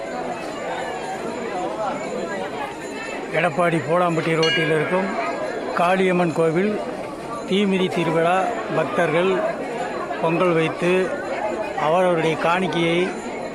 எடப்பாடி போலாம்பட்டி ரோட்டில் இருக்கும் காளியம்மன் கோவில் தீமிதி திருவிழா பக்தர்கள் பொங்கல் வைத்து அவரவருடைய காணிக்கையை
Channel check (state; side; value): identical; both; correlation 1.00